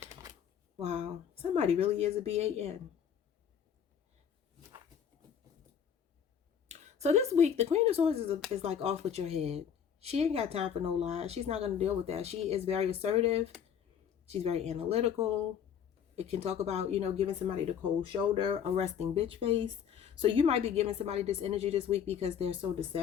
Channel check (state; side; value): quieter; right; 8.1 dB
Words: Wow. Somebody really is a BAN. So this week, the Queen of Swords is like off with your head. She ain't got time for no lies. She's not going to deal with that. She is very assertive. She's very analytical. It can talk about, you know, giving somebody the cold shoulder, a resting bitch face. So you might be giving somebody this energy this week because they're so